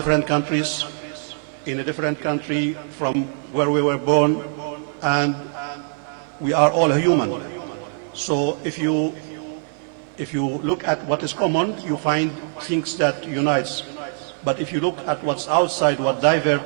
countries, in a different country from where we were born, and we are all human. So if you look at what is common, you find things that unites. But if you look at what's outside, what divert,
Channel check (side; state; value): left; silent; 64 dB below the other